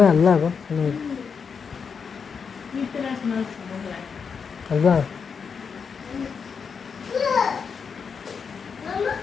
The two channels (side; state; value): right; quieter; 6.0 dB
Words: हाल्ला अब हल्ला